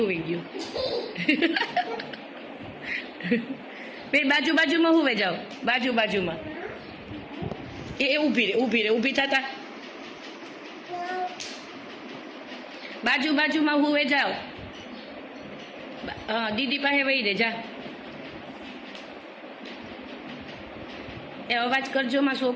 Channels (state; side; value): identical; both; correlation 1.00